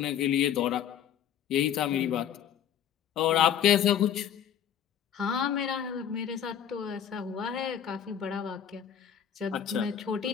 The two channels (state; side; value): quieter; right; 9.3 dB